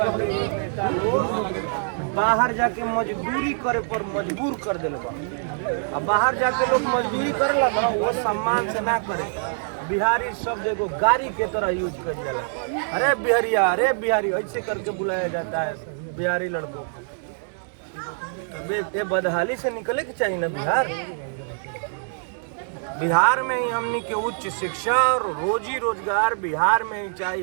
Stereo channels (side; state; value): left; silent; digital silence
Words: नेता लोग बाहर जाके मजदूरी करे पर मजबूर कर दिल बा। अब बाहर जाके लोग मजदूरी करेला ना, वो सम्मान से ना करे। बिहारी शब्द एगो गाड़ी के तरह यूज कर जाला। अरे बिहारिया, अरे बिहारी ऐसे करके बुलाया जाता है बिहारी लड़कों को। ये बदहाली से निकले के चाहिए ना बिहार। बिहार में ही हमनी के उच्च शिक्षा और रोजी रोजगार बिहार में ही